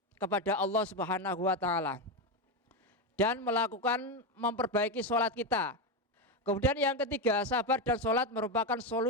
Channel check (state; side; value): normal; both; correlation 0.11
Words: kepada Allah Subhanahu wa taala dan melakukan memperbaiki sholat kita. Kemudian yang ketiga, sabar dan sholat merupakan